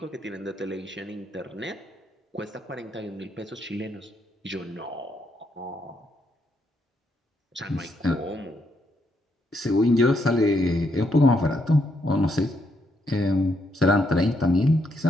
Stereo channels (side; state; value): both; normal; correlation 0.76